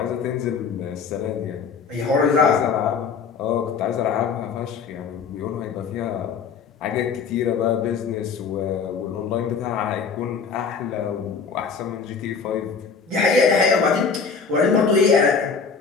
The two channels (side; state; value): right; quieter; 5.6 dB